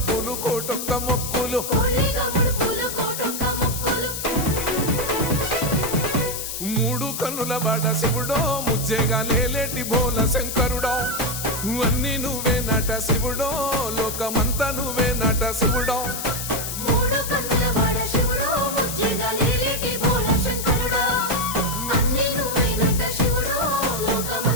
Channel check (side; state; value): left; noise; hiss, 5 dB below the sound